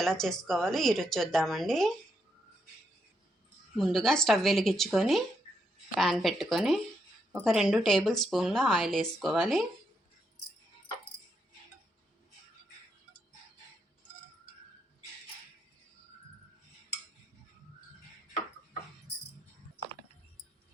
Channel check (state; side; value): normal; both; correlation 0.79